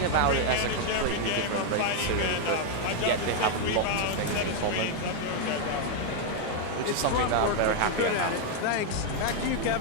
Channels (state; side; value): different; both; correlation 0.00